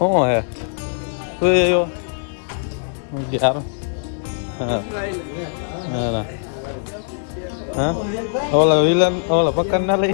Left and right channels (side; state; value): right; silent; digital silence